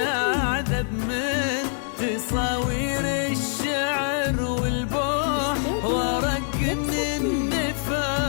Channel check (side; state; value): right; silent; 62 dB below the other